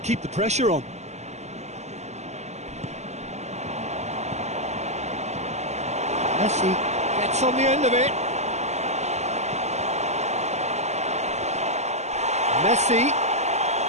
keep the pressure on. Messi gets on the end of it. Messi.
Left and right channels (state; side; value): late; left; 0.33 ms